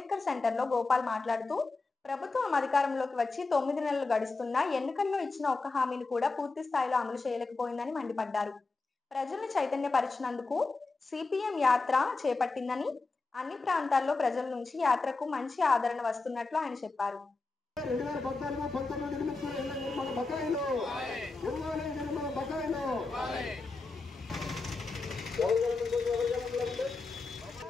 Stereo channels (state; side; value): quieter; right; 3.7 dB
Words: సెంటర్లో గోపాల్ మాట్లాడుతూ ప్రభుత్వం అధికారంలోకి వచ్చి 9 నెలలు గడుస్తున్నా ఎన్నికల్లో ఇచ్చిన ఒక్క హామీని కూడా పూర్తి స్థాయిలో అమలు చేయలేకపోయిందని మండిపడ్డారు. ప్రజల్ని చైతన్యపరిచినందుకు సిపిఎం యాత్ర చేపట్టిందని, అన్ని ప్రాంతాల్లో ప్రజల నుంచి యాత్రకు మంచి ఆదరణ వస్తున్నట్లు ఆయన చెప్పారు. 2014-19 బకాయిలు